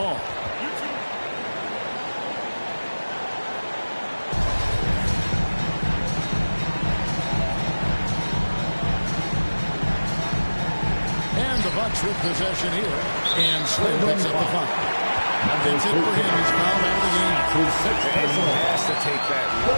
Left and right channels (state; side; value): inverted; both; correlation -1.00